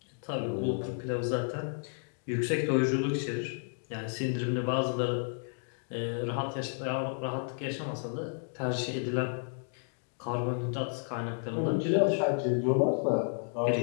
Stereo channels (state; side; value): silent; right; digital silence